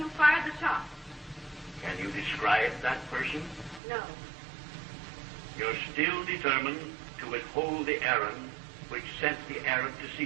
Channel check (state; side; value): drops out; left; at 3.8 s